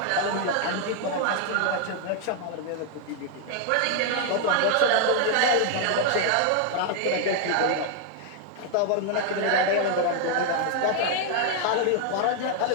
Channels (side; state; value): both; different; correlation 0.00